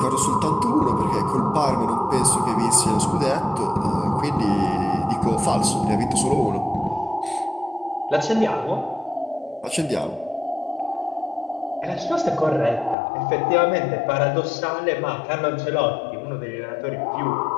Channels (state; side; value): drops out; right; at 13.0 s